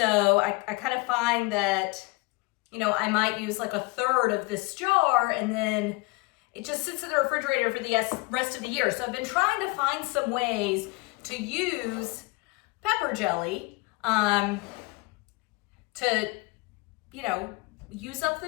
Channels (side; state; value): right; quieter; 24.7 dB